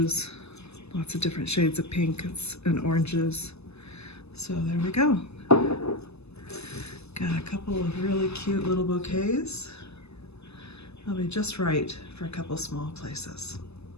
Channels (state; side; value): late; right; 0.79 ms